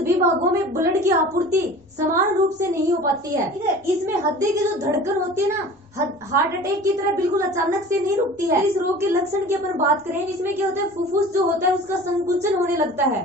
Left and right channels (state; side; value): normal; both; correlation 0.41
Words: भागों में ब्लड की आपूर्ति समान रूप से नहीं हो पाती है। ठीक है, इसमें हृदय की जो धड़कन होती है ना, हार्ट अटैक की तरह बिल्कुल अचानक से नहीं रुकती है। इस रोग के लक्षण की अपन बात करें, इसमें क्या होता है? फुफ्फुस जो होता है उसका संकुचन होने लगता